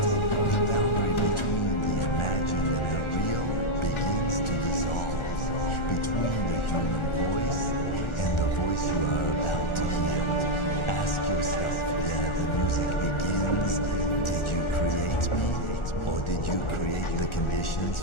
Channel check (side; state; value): right; late; 1.4 ms